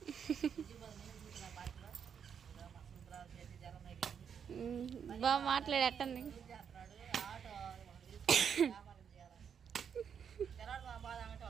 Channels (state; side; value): quieter; left; 7.5 dB